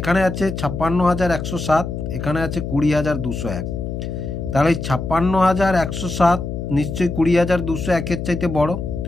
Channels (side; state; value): left; noise; hum, 5 dB below the sound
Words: আছে 56,107, এখানে আছে 20,201। তাহলে এই 56,107 নিশ্চয়ই 20,201-এর চাইতে বড়।